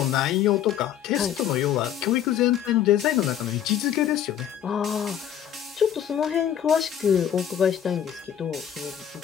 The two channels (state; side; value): quieter; right; 9.9 dB